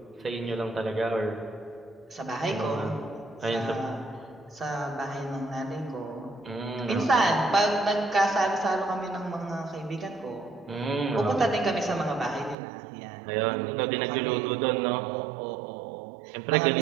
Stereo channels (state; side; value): drops out; left; at 12.6 s